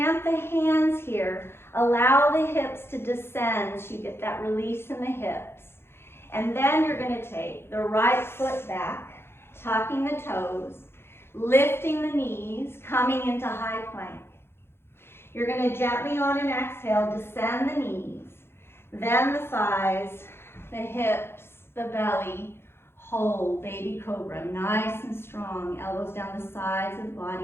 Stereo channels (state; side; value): late; right; 0.12 ms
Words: the hands here. Allow the hips to descend so you get that release in the hips. And then you're going to take the right foot back, tucking the toes, lifting the knees, coming into high plank. You're going to gently on an exhale, descend the knees, then the thighs, the hips, the belly, hold, baby cobra, nice and strong. Elbows down the sides of the